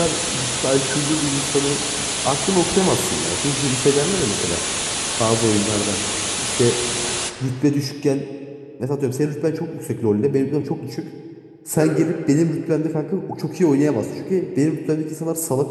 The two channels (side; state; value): both; identical; correlation 1.00